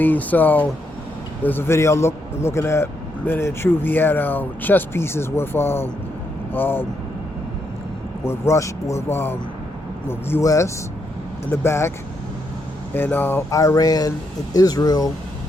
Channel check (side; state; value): both; normal; correlation 0.79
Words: So there's a video looking at Men in Truth. He had chess pieces with U.S. in the back, and Iran and Israel